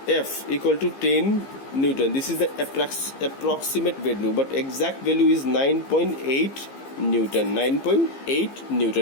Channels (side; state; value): right; late; 15 ms